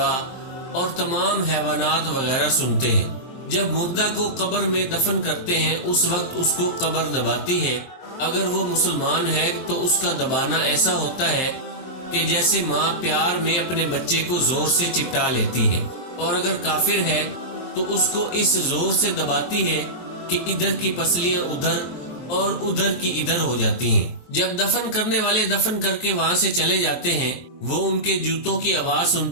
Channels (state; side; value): late; right; 23 ms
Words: اور تمام حیوانات وغیرہ سنتے ہیں۔ جب مردہ کو قبر میں دفن کرتے ہیں اس وقت اس کو قبر دباتی ہے۔ اگر وہ مسلمان ہے تو اس کا دبانا ایسا ہوتا ہے کہ جیسے ماں پیار میں اپنے بچے کو زور سے چپٹا لیتی ہے، اور اگر کافر ہے تو اس کو اس زور سے دباتی ہے کہ ادھر کی پسلیاں ادھر اور ادھر کی ادھر ہو جاتی ہیں۔ جب دفن کرنے والے دفن کر کے وہاں سے چلے جاتے ہیں وہ ان کے جوتوں کی آواز